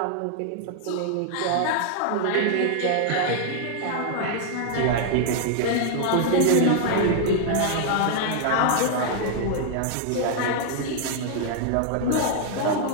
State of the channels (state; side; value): different; both; correlation 0.00